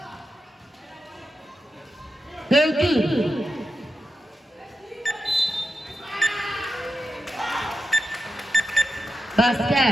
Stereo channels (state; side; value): normal; both; correlation 0.88